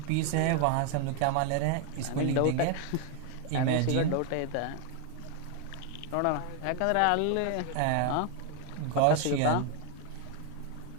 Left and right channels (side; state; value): both; different; correlation 0.00